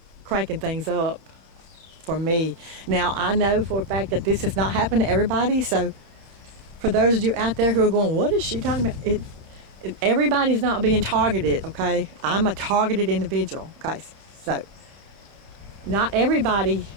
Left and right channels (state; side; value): late; left; 30 ms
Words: cranking things up for me. Now, I know for a fact that this has not happened to everybody, so for those of you out there who are going, what is she talking about? Everybody's not being targeted, okay? I'm a targeted individual, okay? So not everybody